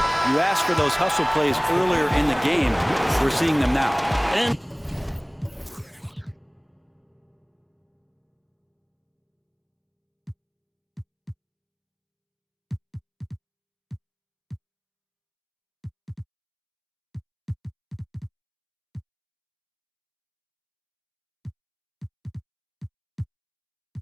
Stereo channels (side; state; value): both; identical; correlation 1.00